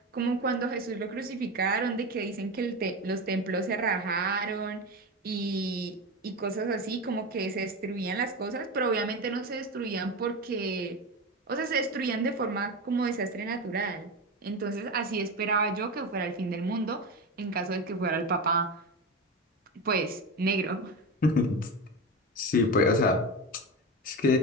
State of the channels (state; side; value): normal; both; correlation 0.22